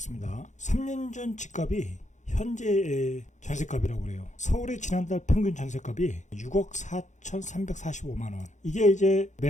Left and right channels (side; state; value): right; late; 0.35 ms